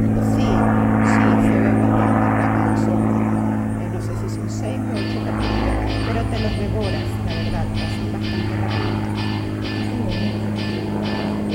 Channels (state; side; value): identical; both; correlation 1.00